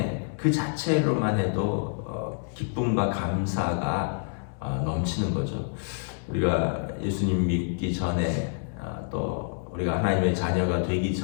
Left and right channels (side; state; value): right; silent; digital silence